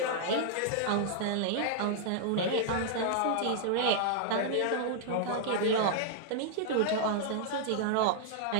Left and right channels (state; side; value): different; both; correlation -0.01